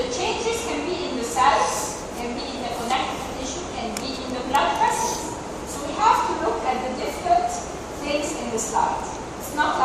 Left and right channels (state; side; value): identical; both; correlation 1.00